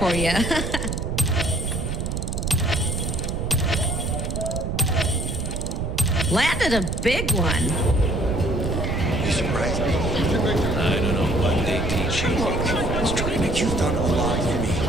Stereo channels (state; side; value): noise; right; rumble, 2 dB below the sound